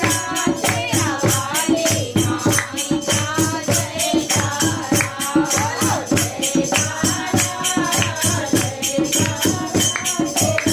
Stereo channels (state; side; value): identical; both; correlation 1.00